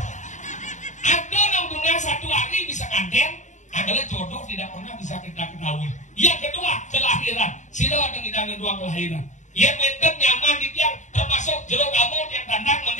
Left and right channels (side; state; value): right; late; 0.35 ms